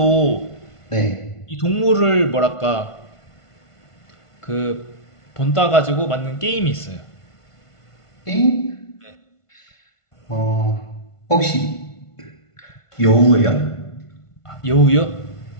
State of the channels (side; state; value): right; late; 1.5 ms